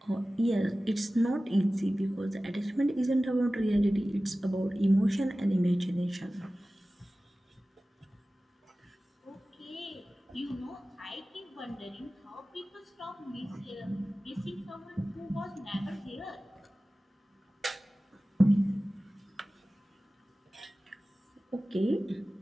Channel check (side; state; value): both; normal; correlation 0.96